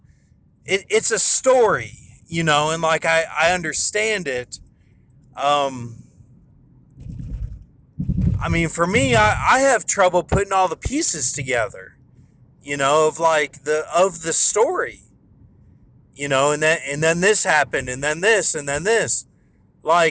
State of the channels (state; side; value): identical; both; correlation 1.00